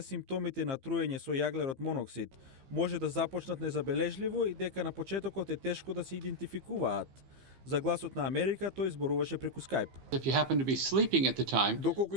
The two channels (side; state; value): left; late; 15 ms